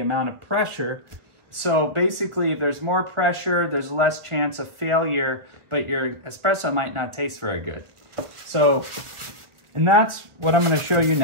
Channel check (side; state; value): left; late; 1.1 ms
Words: of pressure. So basically, if there's more pressure, there's less chance of failure, but your espresso might not taste very good. So, and that's what I'm going to show you